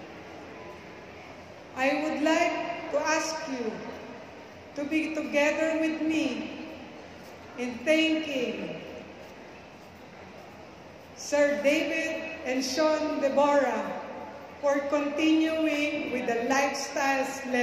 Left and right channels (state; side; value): identical; both; correlation 1.00